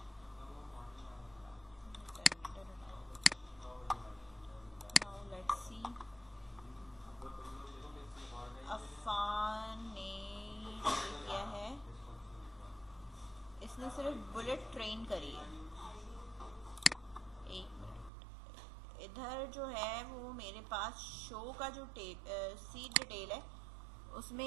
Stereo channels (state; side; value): drops out; left; at 18.1 s